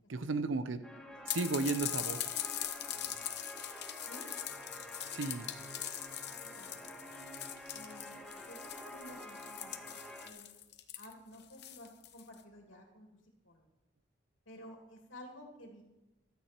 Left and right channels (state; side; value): normal; both; correlation 0.26